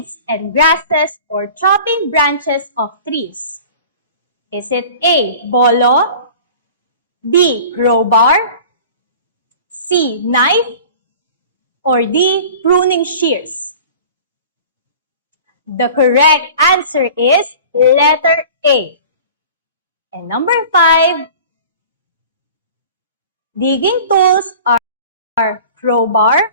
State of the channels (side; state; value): both; inverted; correlation -0.42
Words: and grasses or chopping branches of trees. Is it A, bolo, B, crowbar, C, knife, or D, pruning shears? The correct answer is letter A. And number 5, digging tools are crowbar,